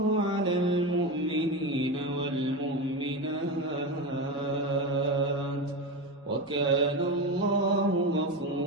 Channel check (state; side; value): normal; both; correlation 0.19